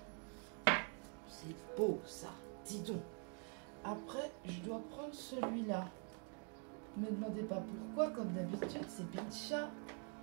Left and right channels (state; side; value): quieter; left; 39.6 dB